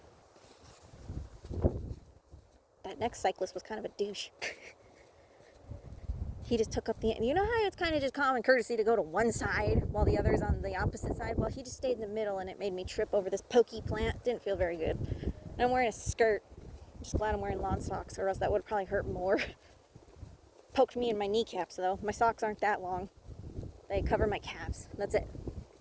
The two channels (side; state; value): both; identical; correlation 1.00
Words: That next cyclist was kind of a douche. He just took up the... You know how it's kind of just common courtesy to go to one side while the other's on the opposite side? Well, he just stayed in the middle and it made me trip over this pokey plant. Didn't feel very good. And I'm wearing a skirt. I'm just glad I'm wearing lawn socks or else that would probably hurt more. Poked me in my kneecaps though. My socks aren't that long. They cover my calves. That's it.